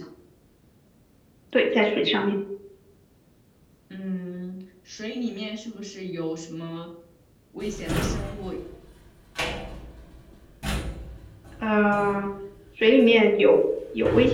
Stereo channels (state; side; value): identical; both; correlation 1.00